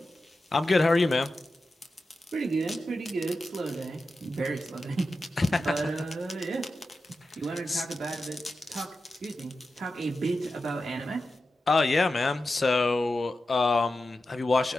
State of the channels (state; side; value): normal; both; correlation 0.91